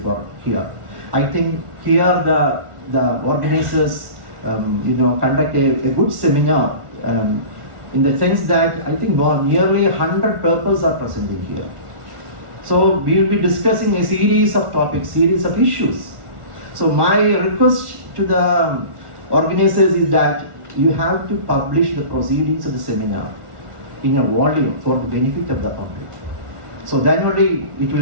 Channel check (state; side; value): late; left; 1.4 ms